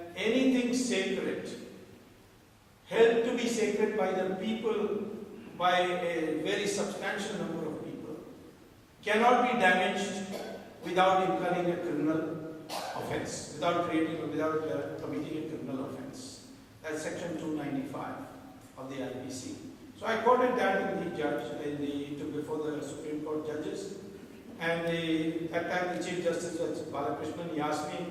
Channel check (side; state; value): both; identical; correlation 1.00